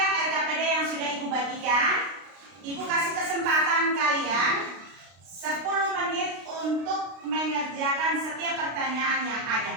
LKPD yang sudah Ibu bagikan. Ibu kasih kesempatan kalian 10 menit untuk mengerjakan setiap pertanyaan yang ada,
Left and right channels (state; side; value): late; left; 32 ms